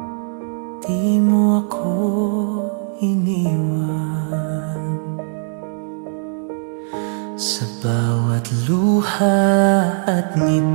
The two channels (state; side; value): silent; left; digital silence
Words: di mo ako iniwan. Sa bawat luha at